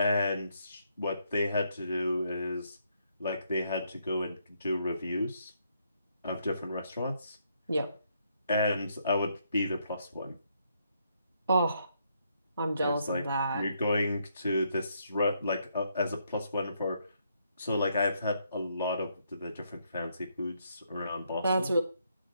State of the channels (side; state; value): both; inverted; correlation -0.74